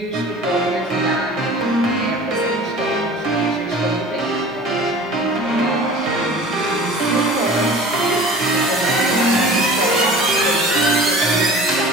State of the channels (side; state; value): both; normal; correlation 0.42